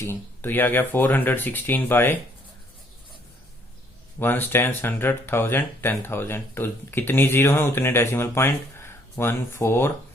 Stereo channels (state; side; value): normal; both; correlation 0.64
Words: तो ये आ गया 416 बाय 1 10 100 1000 10,000, तो कितनी जीरो है उतने डेसिमल पॉइंट,